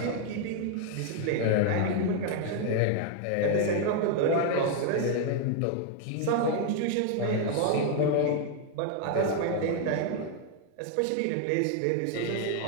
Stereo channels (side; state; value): both; different; correlation 0.00